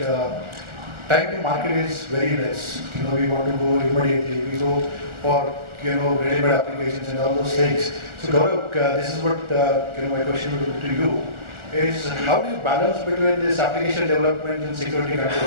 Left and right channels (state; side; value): late; left; 1.4 ms